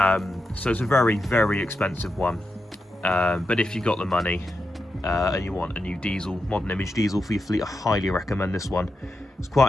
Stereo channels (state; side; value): normal; both; correlation 0.87